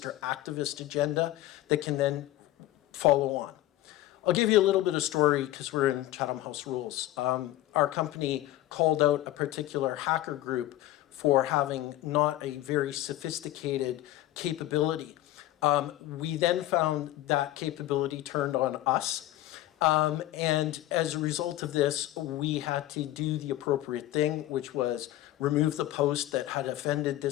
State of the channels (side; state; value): right; quieter; 15.0 dB